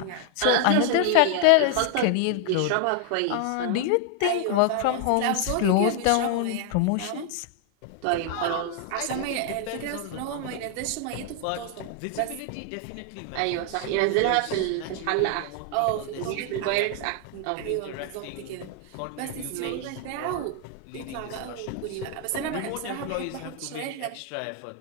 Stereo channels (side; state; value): both; different; correlation 0.00